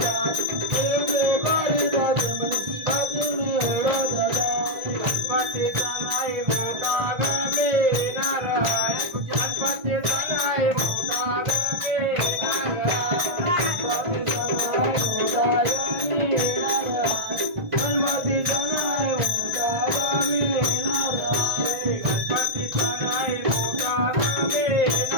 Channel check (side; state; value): left; late; 1.5 ms